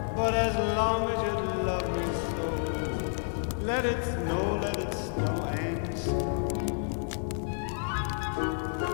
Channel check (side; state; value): right; silent; digital silence